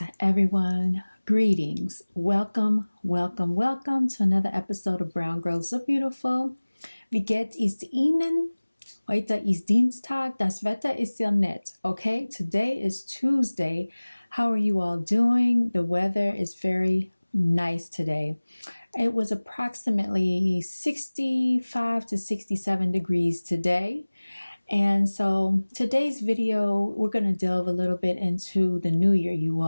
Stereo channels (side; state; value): both; inverted; correlation -1.00